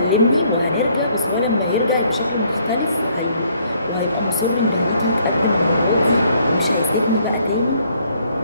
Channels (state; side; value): inverted; both; correlation -0.66